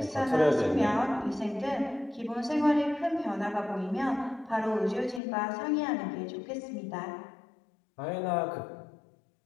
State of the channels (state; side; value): drops out; right; at 5.2 s